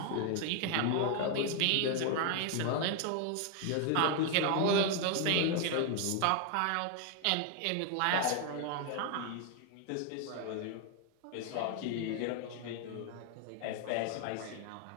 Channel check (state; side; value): different; both; correlation 0.00